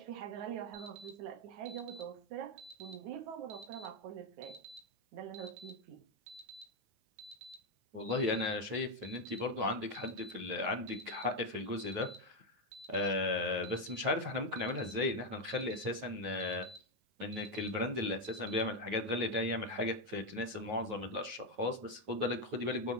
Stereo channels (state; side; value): late; left; 9.3 ms